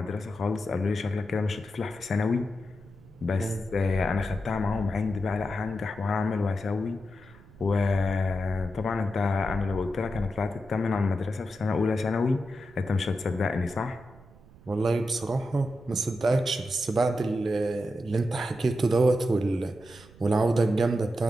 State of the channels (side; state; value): right; noise; rumble, 23 dB below the sound